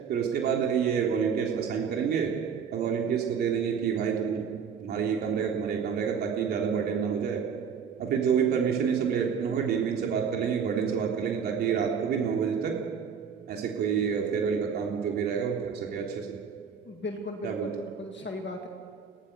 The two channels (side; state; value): left; quieter; 6.7 dB